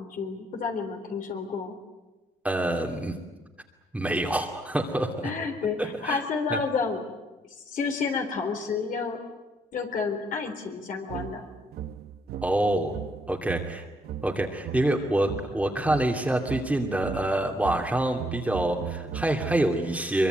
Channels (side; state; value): both; normal; correlation 0.72